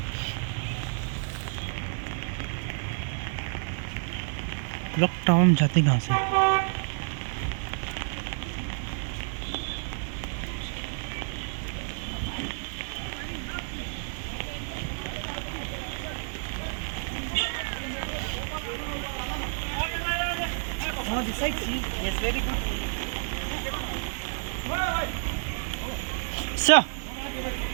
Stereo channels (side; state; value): left; silent; 58 dB below the other